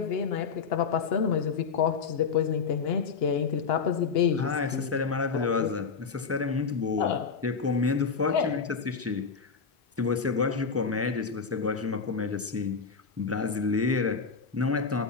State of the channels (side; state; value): right; quieter; 5.5 dB